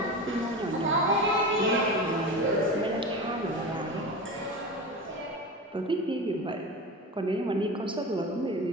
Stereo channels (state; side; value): normal; both; correlation 0.27